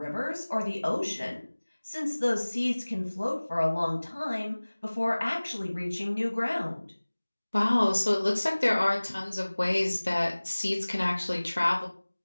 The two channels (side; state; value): both; inverted; correlation -1.00